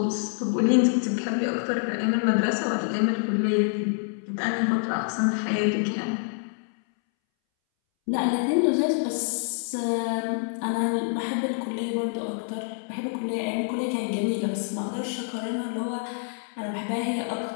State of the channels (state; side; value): silent; right; 60 dB below the other